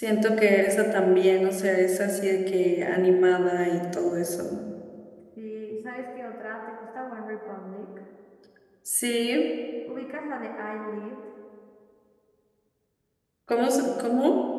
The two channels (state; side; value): identical; both; correlation 1.00